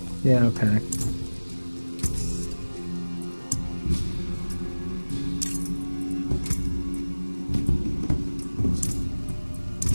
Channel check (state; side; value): inverted; both; correlation -1.00